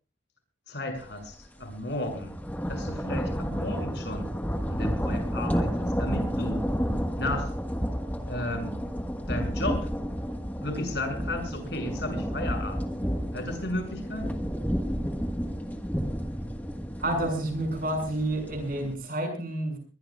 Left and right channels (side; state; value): both; normal; correlation 0.73